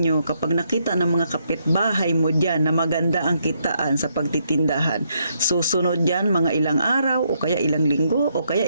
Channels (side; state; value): both; inverted; correlation -0.75